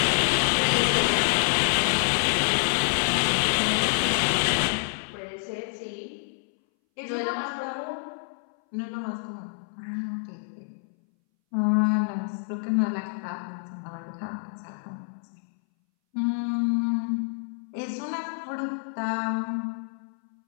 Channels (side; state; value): right; silent; 60 dB below the other